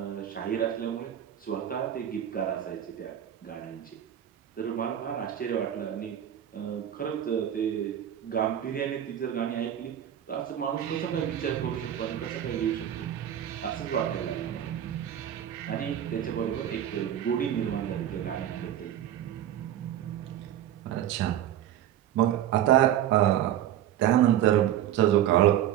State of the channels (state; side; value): quieter; left; 11.1 dB